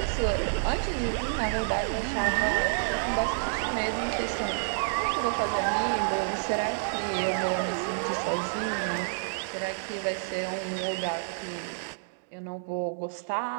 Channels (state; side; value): silent; left; digital silence